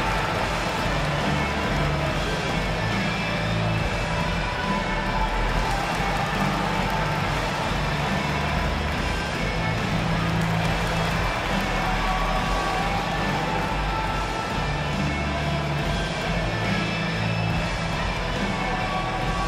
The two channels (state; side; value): identical; both; correlation 1.00